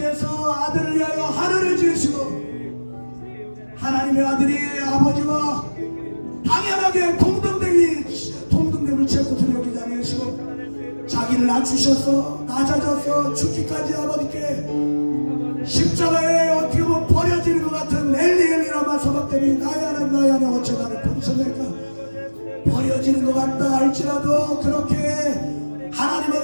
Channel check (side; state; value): both; inverted; correlation -1.00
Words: 아들을 위하여 하늘을 지으시고 하나님의 아들이 아버지와 당연하게 동등됨을 채고 여기지 아니하시고 자기를 낮추셔서 낮아져서 죽기까지 아버지께 십자가에 어떻게 보면 버려지는 것 같은 엘리엘리라마 서박대니 나야는 어째 나를 버리셨을까. 버려지는 것 같다 할지라도 그렇게